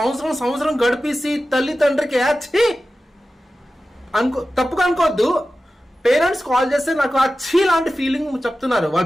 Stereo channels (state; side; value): normal; both; correlation 0.94